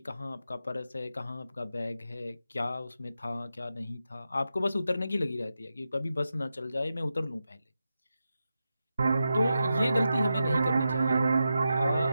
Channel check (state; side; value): inverted; both; correlation -0.89